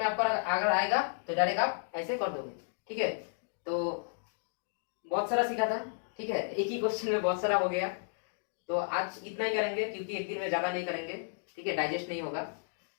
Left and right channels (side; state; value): right; silent; digital silence